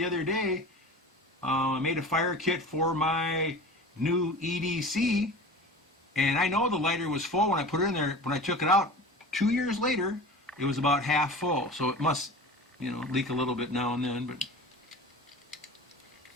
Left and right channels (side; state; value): both; normal; correlation 0.36